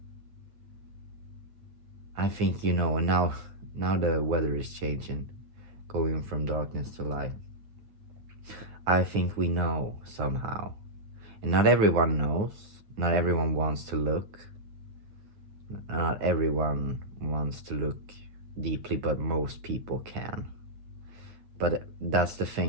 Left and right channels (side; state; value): left; late; 9.3 ms